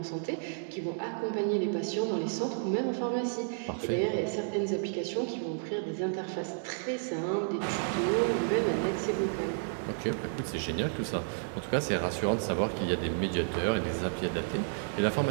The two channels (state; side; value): silent; left; digital silence